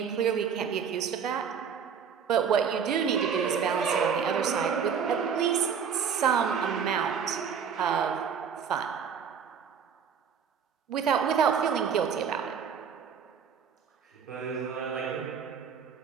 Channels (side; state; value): left; quieter; 7.0 dB